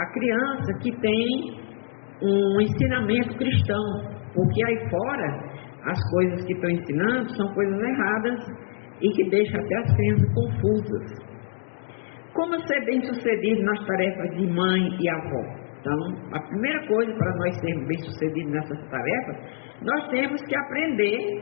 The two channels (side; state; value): right; silent; digital silence